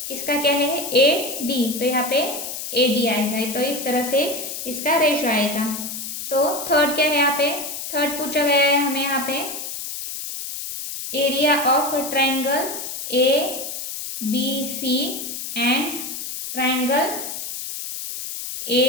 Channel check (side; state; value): left; noise; hiss, 7 dB below the sound